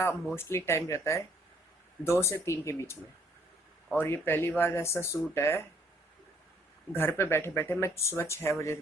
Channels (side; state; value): both; normal; correlation 0.64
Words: मोस्टली टाइम रहता है 2 से 3 के बीच में। और ये पहली बार ऐसा शूट है घर पे बैठे बैठे मैं सुबह 6 बजे